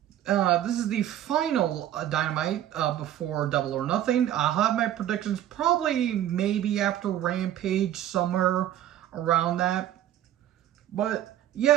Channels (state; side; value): quieter; left; 12.0 dB